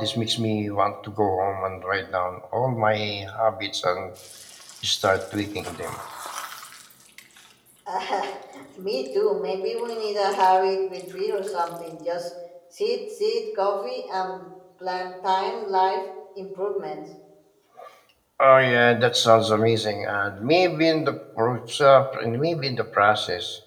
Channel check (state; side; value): identical; both; correlation 1.00